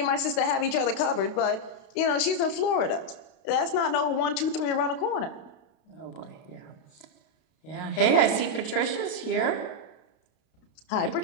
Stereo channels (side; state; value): right; late; 32 ms